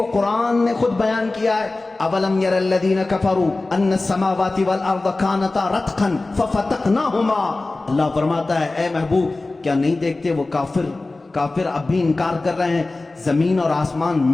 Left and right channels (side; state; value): right; quieter; 3.2 dB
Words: قرآن نے خود بیان کیا ہے۔ اولم یر الذین کفروا ان السماوات والارض کانتا رتقا ففتقناہما۔ اللہ فرماتا ہے اے محبوب کیا نہیں دیکھتے وہ کافر اب بھی انکار کر رہے ہیں، زمین اور آسمان